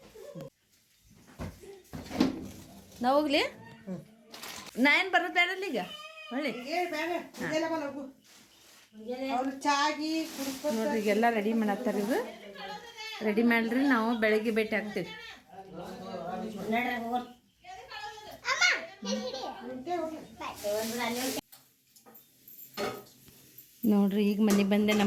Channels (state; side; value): identical; both; correlation 1.00